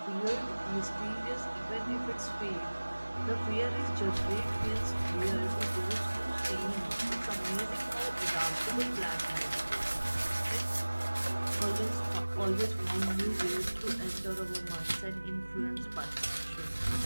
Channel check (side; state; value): both; inverted; correlation -1.00